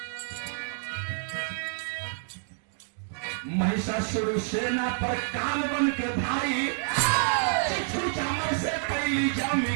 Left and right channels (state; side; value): silent; left; 59 dB below the other